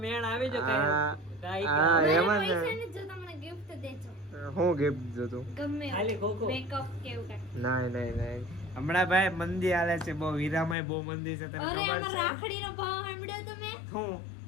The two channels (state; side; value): drops out; right; at 10.8 s